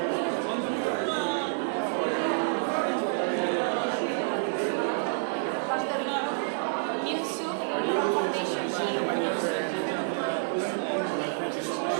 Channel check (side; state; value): left; silent; digital silence